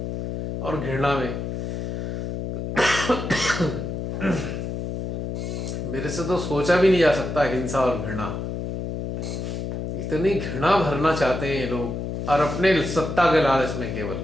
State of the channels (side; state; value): left; noise; hum, 4 dB below the sound